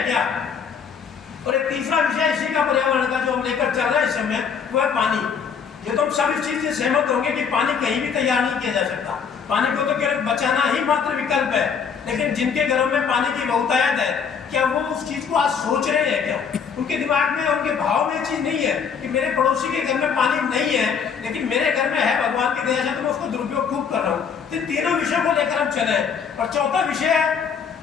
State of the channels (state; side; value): quieter; right; 6.6 dB